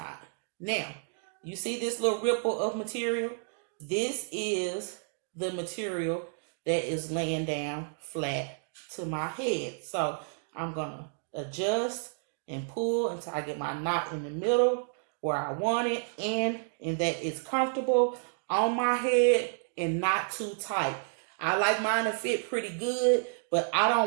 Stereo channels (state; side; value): silent; left; 57 dB below the other